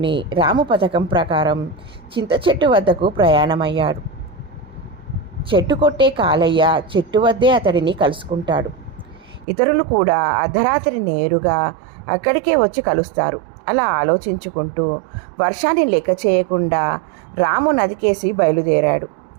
రాము పథకం ప్రకారం చింత చెట్టు వద్దకు ప్రయాణమయ్యాడు. చెట్టు కొట్టే కాలయ్య చెట్టు వద్దే అతడిని కలుసుకుంటాడు. ఇతరులు కూడా అర్ధరాత్రి నేరుగా అక్కడికే వచ్చి కలుస్తారు. అలా ఆలోచించుకుంటూ వర్షాన్ని లెక్క చేయకుండా రాము నదికేసి బయలుదేరాడు.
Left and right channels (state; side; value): drops out; left; at 9.5 s